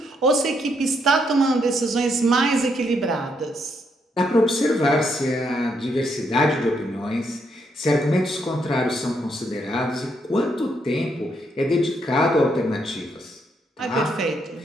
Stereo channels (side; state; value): both; normal; correlation 0.76